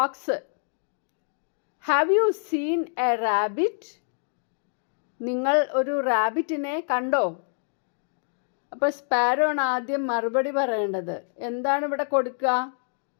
have you seen a rabbit? നിങ്ങൾ ഒരു റാബിറ്റിനെ കണ്ടോ? അപ്പോൾ സ്പാരോ ആണ് ആദ്യം മറുപടി പറയേണ്ടത്. എന്താണ് ഇവിടെ കൊടുക്കുക?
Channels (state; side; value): silent; right; digital silence